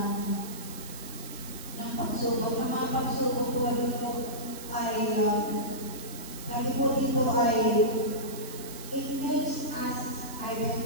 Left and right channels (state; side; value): noise; right; hiss, 13 dB below the sound